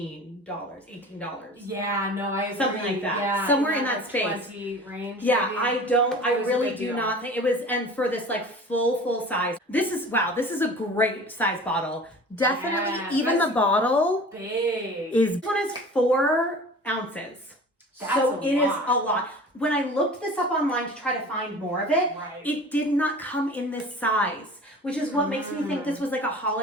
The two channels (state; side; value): normal; both; correlation 0.41